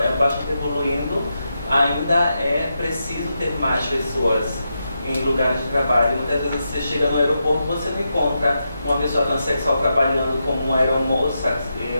bastante evoluindo, ainda é preciso ter mais pessoas em lugares de trabalho. Muitas vezes você chega no aeroporto, você não encontra uma pessoa transexual trabalhando como uma aeromoça.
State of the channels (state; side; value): inverted; both; correlation -0.86